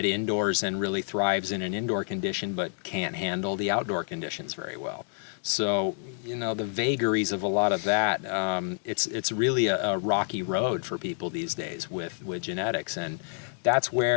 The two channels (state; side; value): silent; right; digital silence